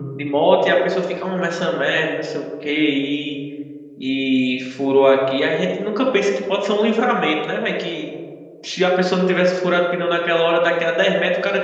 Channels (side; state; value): both; identical; correlation 1.00